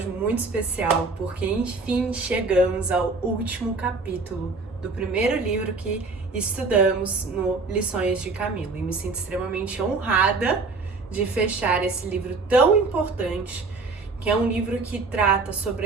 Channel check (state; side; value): quieter; left; 3.9 dB